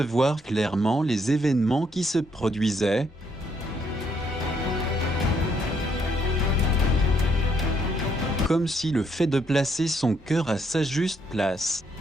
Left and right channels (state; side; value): normal; both; correlation 0.72